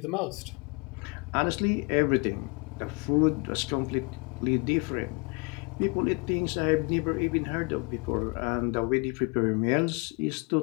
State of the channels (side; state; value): right; quieter; 30.7 dB